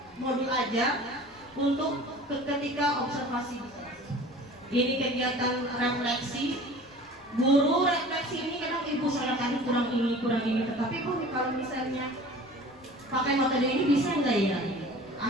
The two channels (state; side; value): noise; left; rumble, 30 dB below the sound